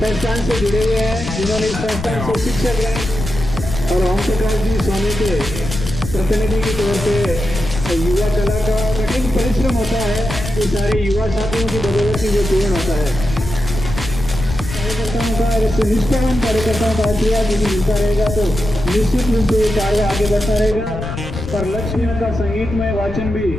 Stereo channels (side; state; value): left; noise; rumble, 7 dB below the sound